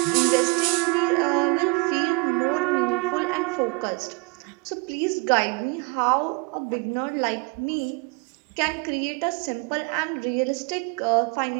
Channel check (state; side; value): quieter; left; 28.5 dB